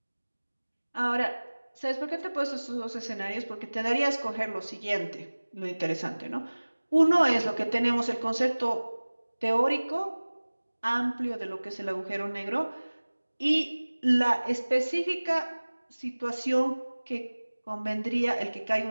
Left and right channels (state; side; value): inverted; both; correlation -1.00